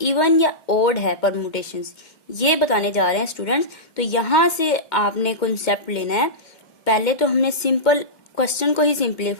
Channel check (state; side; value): late; right; 2.1 ms